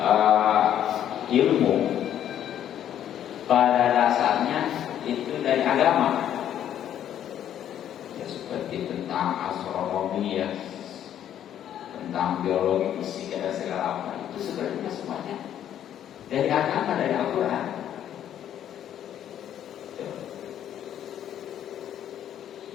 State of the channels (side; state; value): right; quieter; 10.5 dB